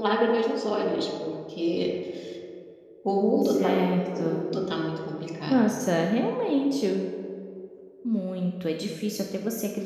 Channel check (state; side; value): identical; both; correlation 1.00